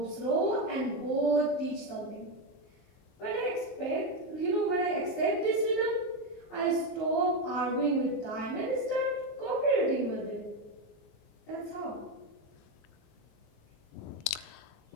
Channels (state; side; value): late; right; 23 ms